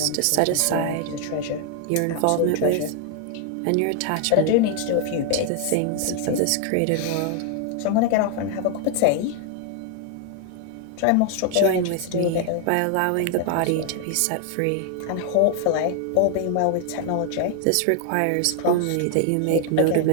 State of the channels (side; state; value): both; different; correlation 0.00